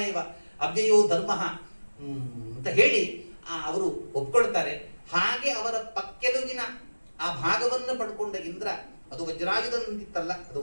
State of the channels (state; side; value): inverted; both; correlation -1.00